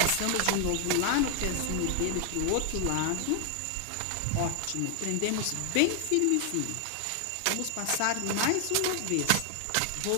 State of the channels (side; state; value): both; different; correlation 0.00